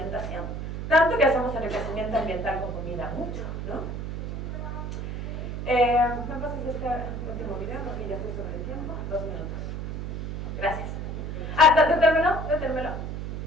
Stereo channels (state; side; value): noise; right; hum, 5 dB below the sound